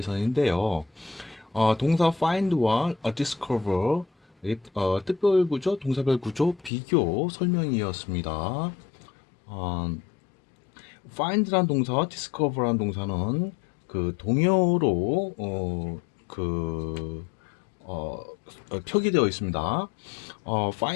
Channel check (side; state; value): right; drops out; at 6.7 s